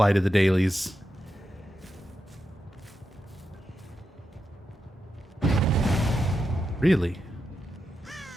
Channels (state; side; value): normal; both; correlation 0.87